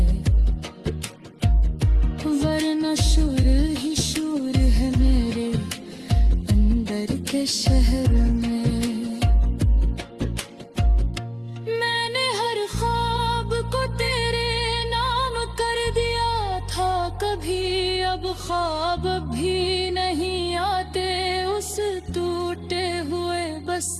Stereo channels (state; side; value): identical; both; correlation 1.00